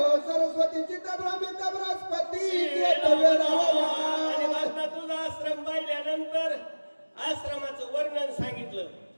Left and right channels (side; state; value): both; inverted; correlation -1.00